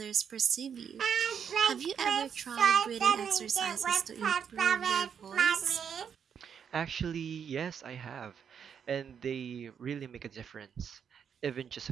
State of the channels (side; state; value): left; quieter; 7.6 dB